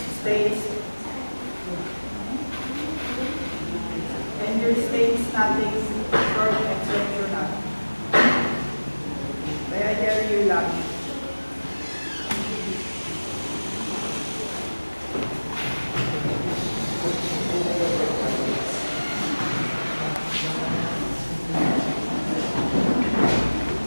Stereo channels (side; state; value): both; inverted; correlation -1.00